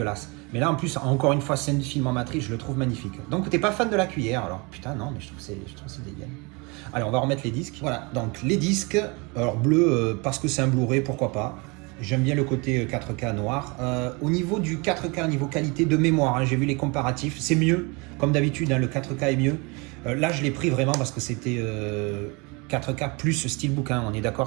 Mais là en plus, encore une fois, scène du film en matrice, je le trouve magnifique. Donc t'es pas fan de la cuillère alors? Putain non, mais je trouve c'est dégueulasse. Allez, on va remettre les disques. Voilà, donc les disques, alors bleu, parce que c'est un Blu-ray, pourquoi pas. J'aime bien le côté 4K noir. Au niveau du 4K, niveau qualité de mémoire, hein, j'ai vu les comparatifs, c'est mieux. Comme d'habitude, hein, le 4K est mieux. Là, je l'ai pris vraiment parce que c'était 4K plus Steelbook. Hein. On est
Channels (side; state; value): left; quieter; 28.5 dB